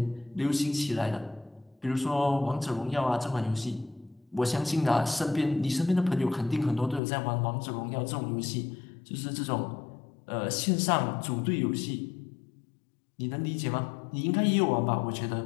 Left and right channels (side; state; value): right; drops out; at 7.0 s